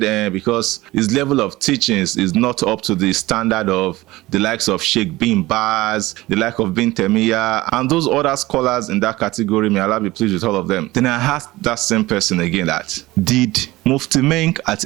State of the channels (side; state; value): left; quieter; 18.9 dB